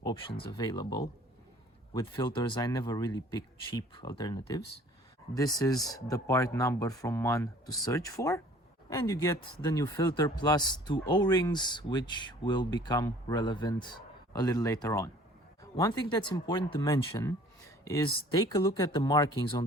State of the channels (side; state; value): both; normal; correlation 0.52